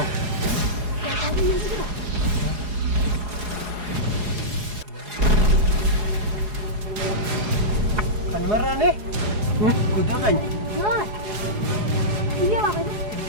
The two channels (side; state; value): left; late; 4.8 ms